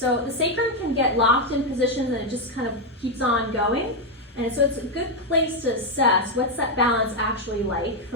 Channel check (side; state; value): both; normal; correlation 0.03